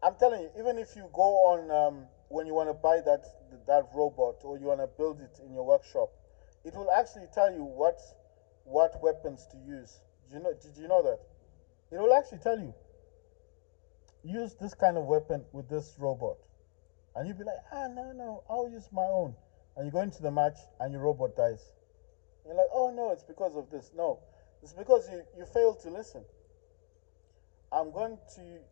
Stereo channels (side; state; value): right; quieter; 37.4 dB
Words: I'm telling you, even if you go on when you want to buy that robot or you want to build it in your workshop, it will actually tell you what weapons to use. Did you know that? It will actually tell you use this kind of weapon with this robot. And you'd be like, no, I'll use my own. And you go into the match and your robot dies. And you're like, oh no, it's because of this. No, it's because you failed to listen. I'm going to